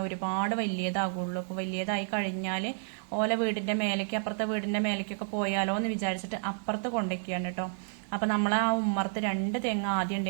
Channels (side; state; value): left; silent; digital silence